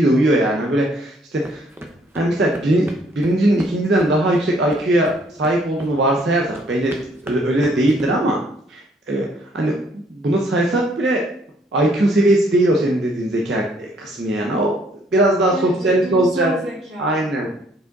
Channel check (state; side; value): normal; both; correlation 0.65